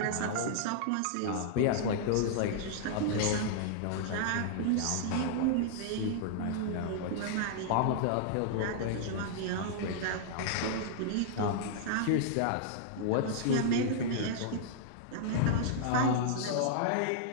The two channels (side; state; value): both; different; correlation -0.01